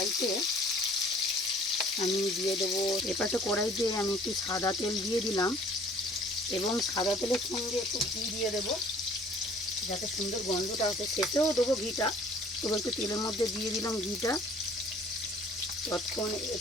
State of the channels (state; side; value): normal; both; correlation 0.53